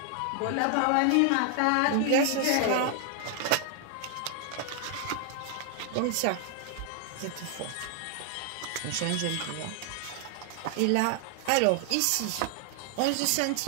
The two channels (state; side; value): different; both; correlation 0.00